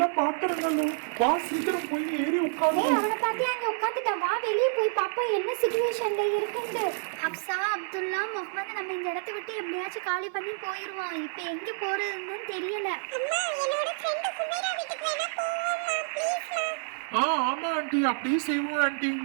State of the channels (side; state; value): left; silent; digital silence